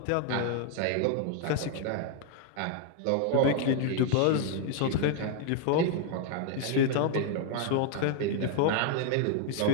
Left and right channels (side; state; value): both; different; correlation 0.00